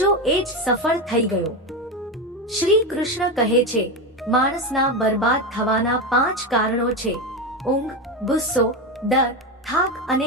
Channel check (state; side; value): normal; both; correlation 0.15